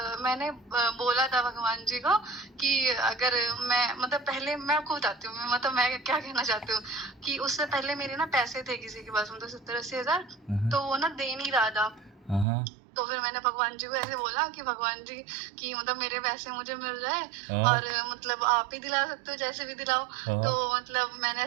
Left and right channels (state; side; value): drops out; left; at 12.5 s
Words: मैंने बोला था भगवान जी को कि अगर मैं मतलब पहले मैं आपको बताती हूँ, मतलब मैं क्या कहना चाहती हूँ कि उससे पहले मेरे ना पैसे थे किसी के पास, मतलब 70-80 हज़ार, हाँ, हाँ। तो वो ना दे नहीं रहा था। हाँ, हाँ। तो फिर मैंने भगवान जी को ऐसे बोला कि भगवान जी कि मतलब मेरे पैसे मुझे मिल जाए, हाँ, और मतलब आप ही दिला सकते हो, जैसे भी दिलाओ। तो हाँ, मतलब मैंने